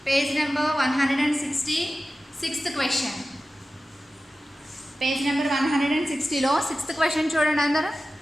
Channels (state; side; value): normal; both; correlation 0.95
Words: page number 160 6th question. Page number 160లో 6th క్వశ్చన్ చూడండి అందరూ.